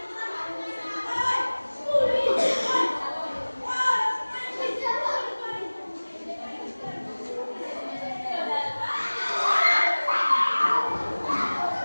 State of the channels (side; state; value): both; inverted; correlation -1.00